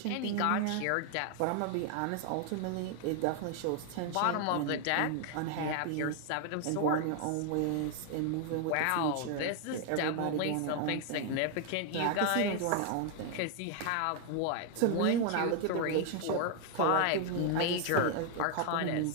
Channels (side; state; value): both; different; correlation 0.00